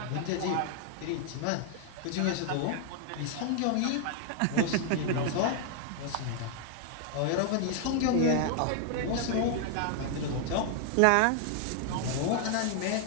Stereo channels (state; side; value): different; both; correlation 0.00